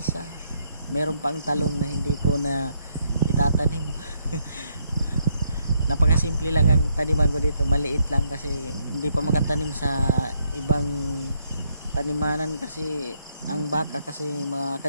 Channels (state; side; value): inverted; both; correlation -0.75